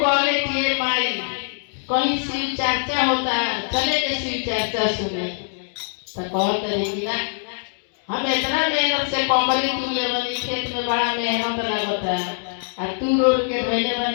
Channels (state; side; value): silent; right; 64 dB below the other